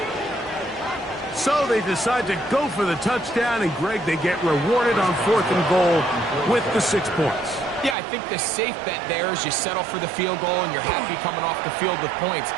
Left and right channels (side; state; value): left; drops out; at 8.0 s